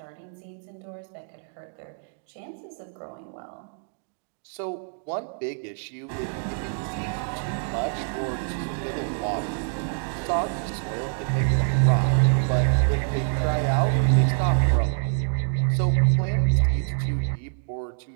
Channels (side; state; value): left; silent; 61 dB below the other